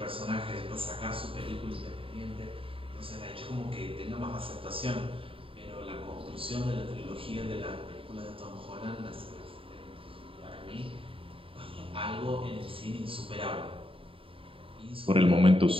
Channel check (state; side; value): late; left; 0.26 ms